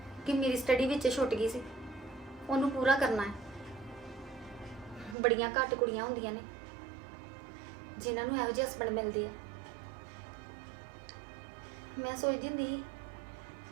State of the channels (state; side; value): drops out; left; at 5.2 s